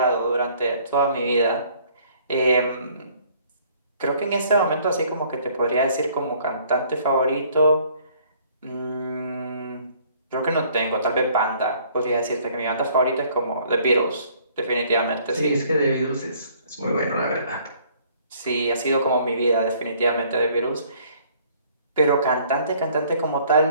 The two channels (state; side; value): inverted; both; correlation -0.59